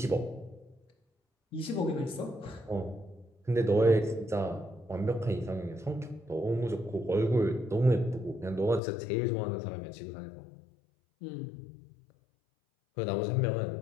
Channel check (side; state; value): right; drops out; at 8.8 s